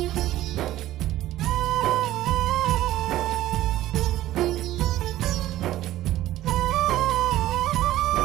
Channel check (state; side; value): quieter; left; 14.6 dB